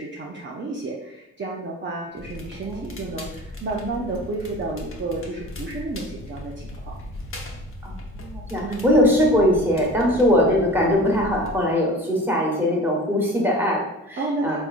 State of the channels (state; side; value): normal; both; correlation 0.39